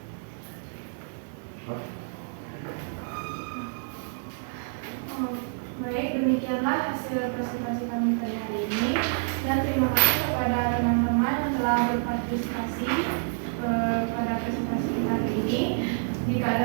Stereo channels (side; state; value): left; silent; digital silence